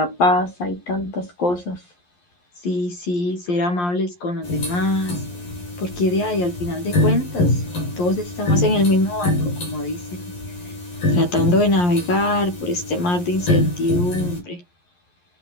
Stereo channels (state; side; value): late; right; 11 ms